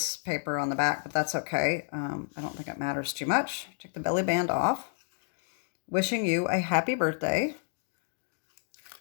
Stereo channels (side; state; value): right; silent; digital silence